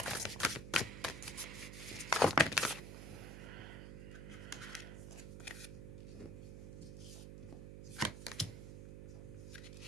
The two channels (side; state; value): right; noise; hum, 9 dB below the sound